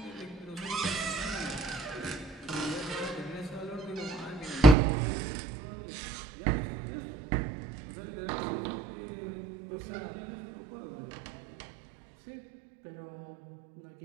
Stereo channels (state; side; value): drops out; left; at 4.8 s